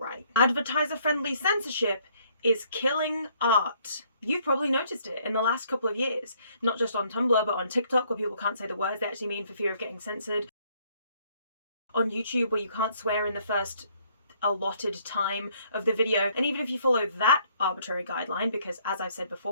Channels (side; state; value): both; inverted; correlation -0.65